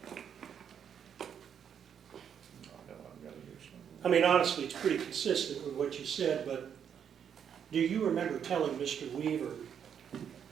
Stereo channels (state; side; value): quieter; left; 8.2 dB